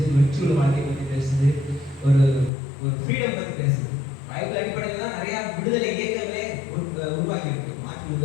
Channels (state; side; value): drops out; right; at 2.5 s